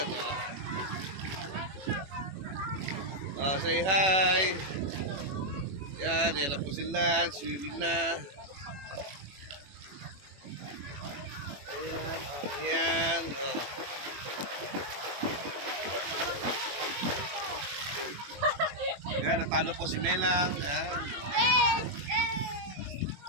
Oh, say hi. Ayan, yan na po sila. Swimming na. Ayan, ayan. Oh. Ayan, natalo po si Melang. Ayan.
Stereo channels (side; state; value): left; late; 21 ms